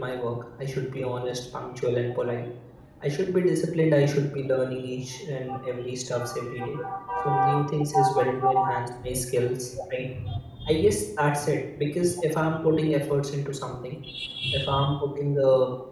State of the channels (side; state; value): both; identical; correlation 1.00